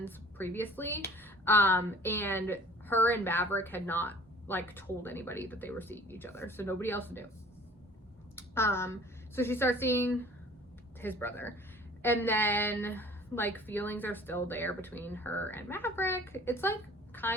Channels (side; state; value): both; normal; correlation 0.48